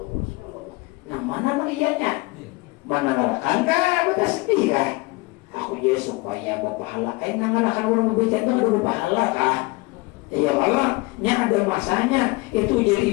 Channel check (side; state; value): right; quieter; 23.5 dB